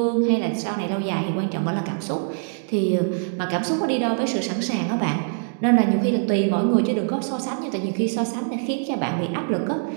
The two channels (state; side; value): silent; left; digital silence